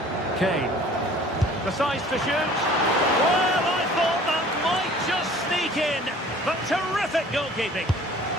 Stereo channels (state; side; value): normal; both; correlation 0.50